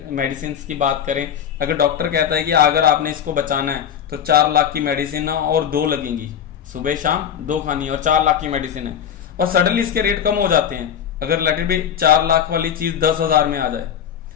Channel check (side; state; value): right; quieter; 8.8 dB